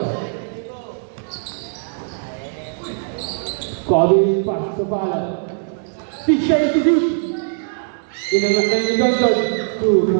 Kobe pass to Fala. 6 siya to shoot. Inangan ni Johnson. 2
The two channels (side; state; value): left; silent; digital silence